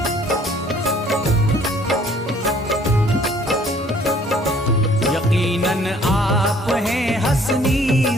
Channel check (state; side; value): normal; both; correlation 0.58